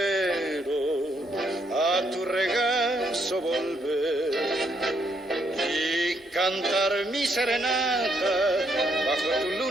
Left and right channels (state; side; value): normal; both; correlation 0.74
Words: a tu regazo volver y cantar mi serenata bajo tu